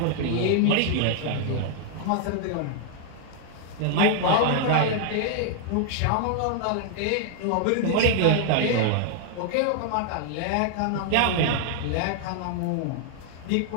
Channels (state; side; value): different; both; correlation 0.00